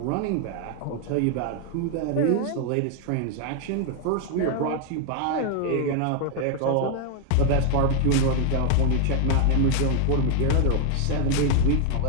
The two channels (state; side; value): different; both; correlation 0.00